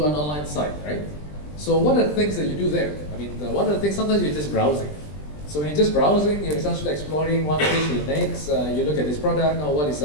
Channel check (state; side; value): late; right; 20 ms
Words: an online site, right? So what are the things that you do there? I mean, one of the things, sometimes you're just browsing. So when you're just browsing, you're essentially exploring one page to the next. You look at this product, or what is